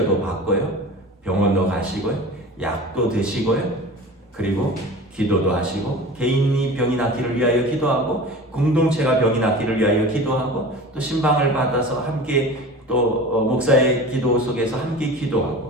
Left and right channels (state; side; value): normal; both; correlation 0.36